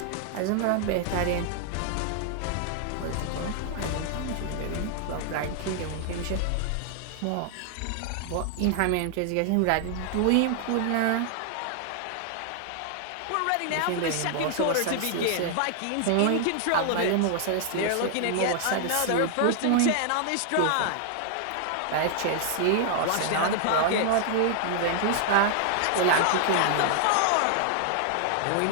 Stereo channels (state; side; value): different; both; correlation 0.00